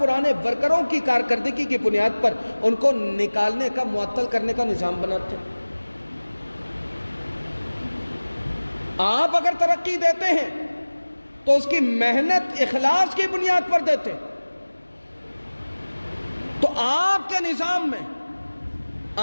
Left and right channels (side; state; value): both; inverted; correlation -1.00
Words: ورکروں کی کارکردگی کی بنیاد پر ان کو نکالنے کا، معطل کرنے کا نظام بناتے ہیں۔ آپ اگر ترقی دیتے ہیں تو اس کی محنت اخلاص کی بنیاد پر دیتے ہیں، تو آپ کے نظام میں،